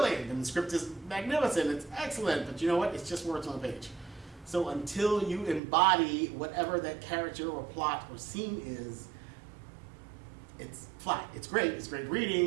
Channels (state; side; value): drops out; left; at 5.6 s